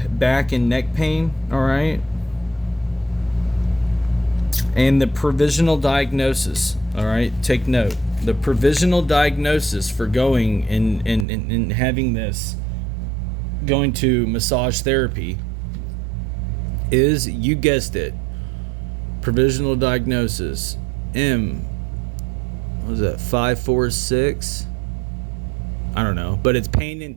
back and neck pain. All right. And the provisional diagnosis. All right. Take note. The provisional diagnosis for going and having this, going to massage therapy, is, you guessed it, provisional diagnosis what was that, 546? I don't know, but it's pain in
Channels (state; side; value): drops out; left; at 11.2 s